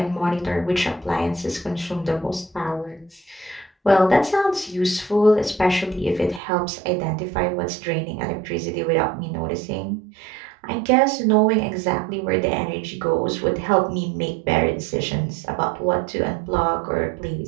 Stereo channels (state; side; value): drops out; left; at 6.4 s